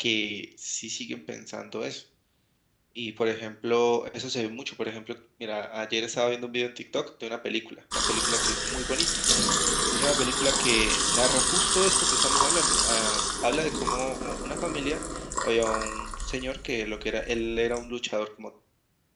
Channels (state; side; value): identical; both; correlation 1.00